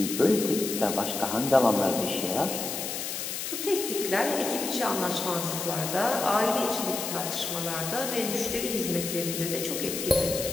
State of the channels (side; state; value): left; noise; hiss, 4 dB below the sound